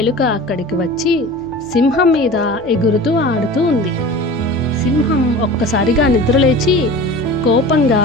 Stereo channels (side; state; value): left; noise; hum, 25 dB below the sound